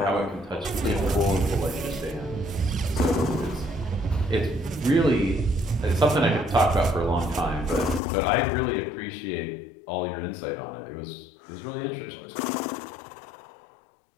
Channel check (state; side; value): drops out; right; at 8.0 s